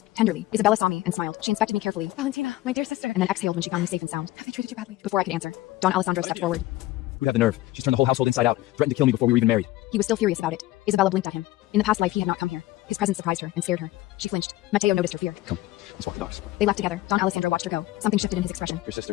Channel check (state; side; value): quieter; right; 16.9 dB